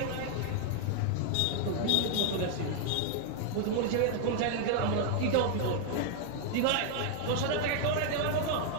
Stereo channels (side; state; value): both; different; correlation 0.00